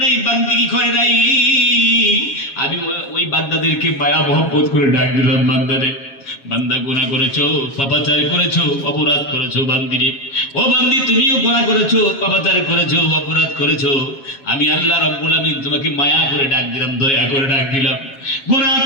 নাই, বান্দিগি করে নাই। আমি ওই বান্দাদেরকে মায়া মহব্বত করে ডাক দিলাম, বান্দারে, বান্দা গুনাহ করেছো, পাপাচার করেছো, অপরাধ করেছো। বান্দিরে, ও বান্দি, তুমিও গুনাহ করেছো, পাপাচার করেছো, অপরাধ করেছো। আমি আল্লাহ রাব্বুল আমিন তোমাকে মায়া করে ডাক দিলাম, দয়া করে ডাক দিলাম। গুনাহ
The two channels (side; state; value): right; late; 7.3 ms